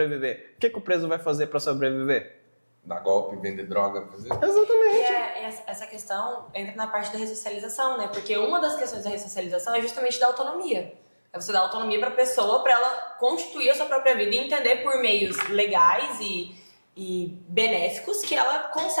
o que o preso vai fazer para sobreviver? Dar golpe, vender droga, fazer... Exatamente. E essa questão entra na parte da ressocialização, né? Porque uma das questões da ressocialização é justamente dar autonomia. É você dar autonomia para a pessoa, para ela constituir a sua própria vida e entender por meios legais e benéficos que ela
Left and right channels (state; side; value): inverted; both; correlation -1.00